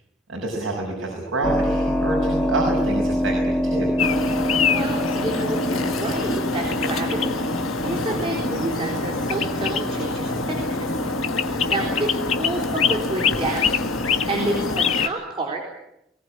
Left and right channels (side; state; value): both; normal; correlation 0.50